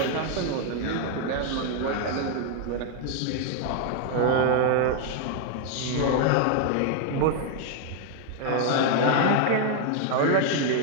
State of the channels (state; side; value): different; both; correlation 0.00